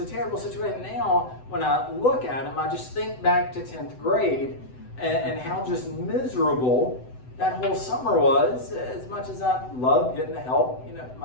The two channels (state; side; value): late; right; 7.9 ms